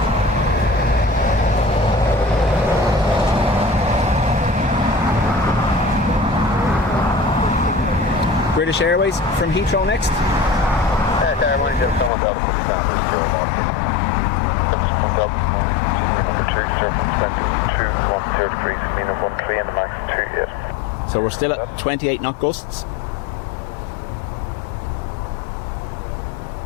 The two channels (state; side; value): drops out; right; at 12.1 s